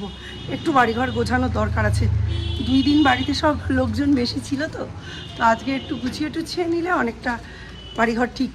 একটু বাড়িঘর গোছানোর দরকার আছে। 2 দিন বাড়িতে সব লোকজন বেশি ছিল তো আজকে একটু গুছিয়ে টুছিয়ে নিলে অনেকটা বাড়িঘর ঠিক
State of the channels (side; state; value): both; identical; correlation 1.00